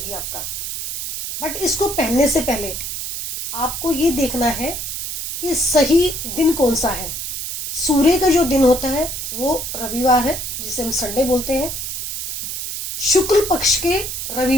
आपका। बट इसको पहनने से पहले आपको ये देखना है कि सही दिन कौन सा है। सूर्य का जो दिन होता है वो रविवार है, जिसे हम संडे बोलते हैं। शुक्ल पक्ष के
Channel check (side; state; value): right; noise; hiss, 5 dB below the sound